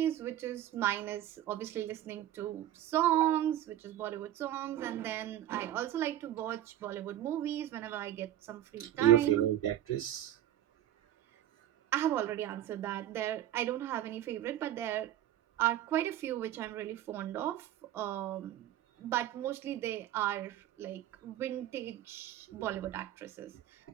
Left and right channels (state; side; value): quieter; left; 12.4 dB